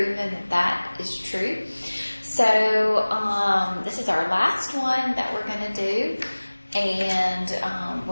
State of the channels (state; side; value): inverted; both; correlation -1.00